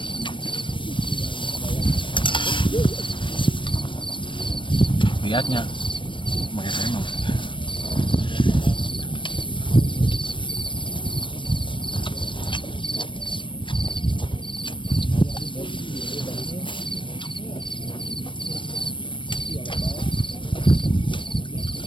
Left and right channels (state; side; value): late; right; 0.24 ms